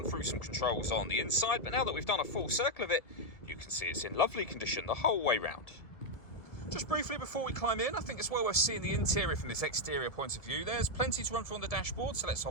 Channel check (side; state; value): right; late; 1.7 ms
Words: through some controls on the inside. But now that we've done a full circle of it, you can see it's in lovely condition the whole way round. Just briefly before we climb in, I think it's well worth seeing the interior from this exterior point of view. There's plenty to run through on the dashboard, so let's